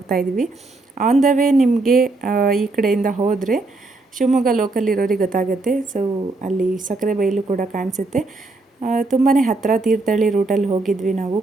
ಇದ್ದೀವಿ. ಆನ್ ದ ವೇ ನಿಮಗೆ ಈ ಕಡೆಯಿಂದ ಹೋದರೆ ಶಿವಮೊಗ್ಗ ಲೋಕಲ್ ಇರೋರಿಗೆ ಗೊತ್ತಾಗುತ್ತೆ. ಸೊ ಅಲ್ಲಿ ಸಕ್ಕರೆ ಬೈಲು ಕೂಡ ಕಾಣಿಸುತ್ತೆ. ತುಂಬಾ ಹತ್ತಿರ ತೀರ್ಥಹಳ್ಳಿ ರೂಟಲ್ಲಿ ಹೋಗಿದ್ವಿ ನಾವು.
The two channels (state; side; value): quieter; left; 3.3 dB